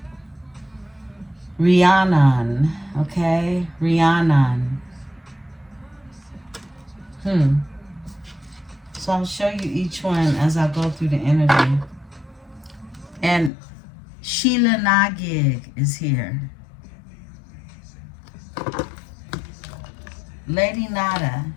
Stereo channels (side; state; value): right; drops out; at 13.5 s